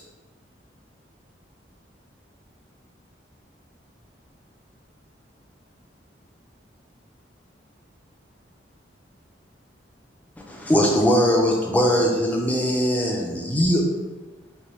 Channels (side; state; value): both; normal; correlation 0.63